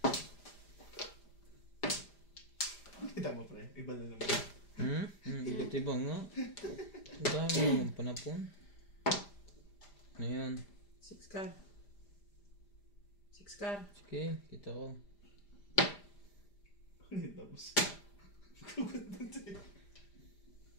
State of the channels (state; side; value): late; right; 5.0 ms